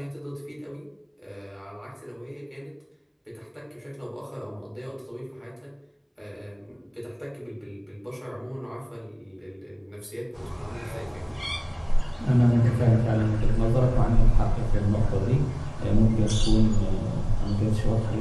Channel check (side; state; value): both; identical; correlation 1.00